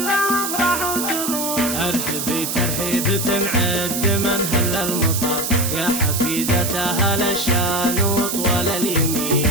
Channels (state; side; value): noise; right; hiss, 3 dB below the sound